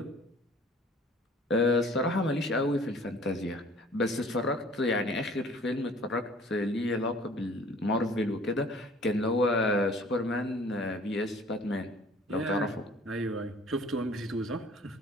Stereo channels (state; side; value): normal; both; correlation 0.51